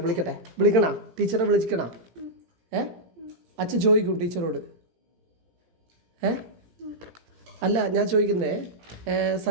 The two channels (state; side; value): late; left; 17 ms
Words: വിളിക്കണ ടീച്ചറെ വിളിക്കണ. അച്ഛൻ ചോദിക്കും ടീച്ചറോട്. അല്ല ഞാൻ ചോദിക്കുന്നേ,